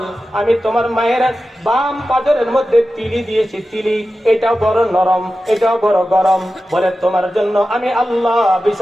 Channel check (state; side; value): normal; both; correlation 0.93